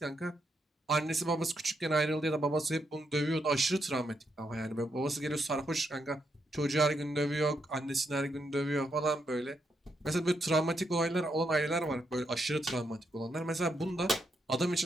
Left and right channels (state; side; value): normal; both; correlation 0.80